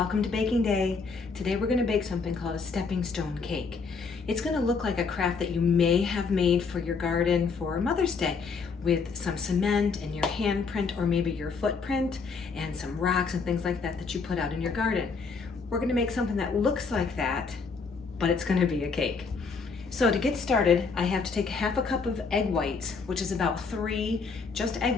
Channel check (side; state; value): right; quieter; 4.9 dB